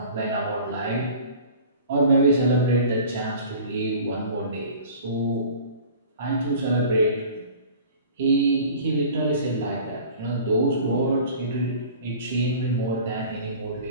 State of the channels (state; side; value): inverted; both; correlation -0.44